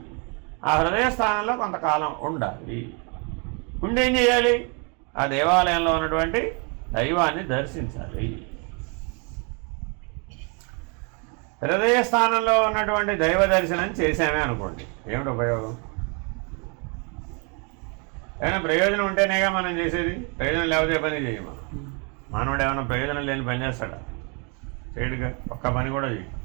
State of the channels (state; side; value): quieter; left; 34.6 dB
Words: ఆ హృదయ స్థానంలో కొంతకాలం ఉండాలి. ఉండి ఏం చేయాలి? ఆ దేవాలయంలో ఉన్నటువంటి దైవాన్ని దర్శించాలి. హృదయ స్థానంలో ఉన్నటువంటి దైవ దర్శనం చేసామే అనుకోండి, ఏమిటి ఉపయోగం? ఏమైనా ప్రయోజనం ఉంటేనేగా మనం చేసేది. ప్రయోజనం లేకపోతే పని చేయము. మానవుడు ఏమైనా ప్రయోజనం లేని పని చేస్తాడా? చేయడుగా. ఒక్క పని కూడా చేయ.